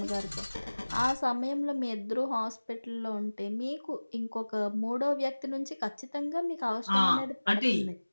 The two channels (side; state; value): both; inverted; correlation -1.00